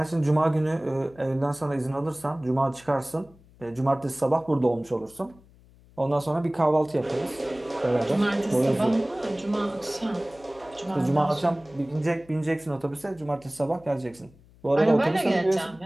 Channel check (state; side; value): noise; left; hum, 26 dB below the sound